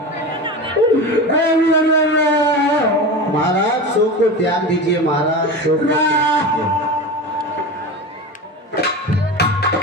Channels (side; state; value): both; normal; correlation 0.27